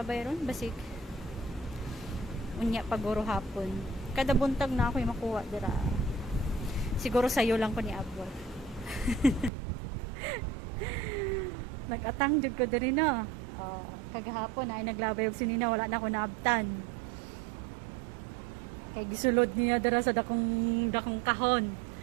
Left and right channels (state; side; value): drops out; left; at 9.5 s